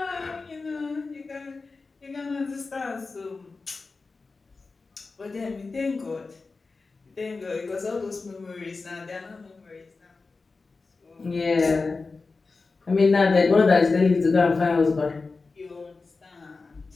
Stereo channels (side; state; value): right; quieter; 4.0 dB